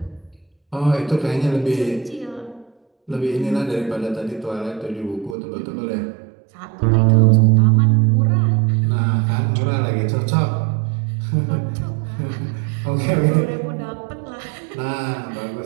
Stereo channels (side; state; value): left; drops out; at 5.4 s